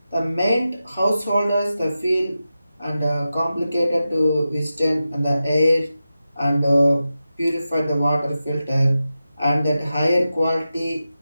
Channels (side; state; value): both; inverted; correlation -0.92